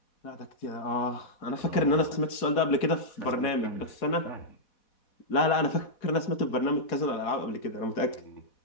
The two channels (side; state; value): right; late; 4.1 ms